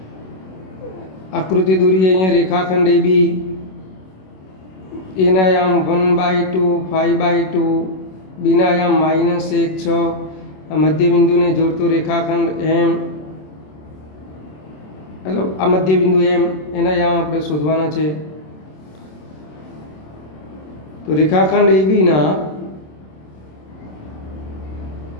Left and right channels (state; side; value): late; right; 27 ms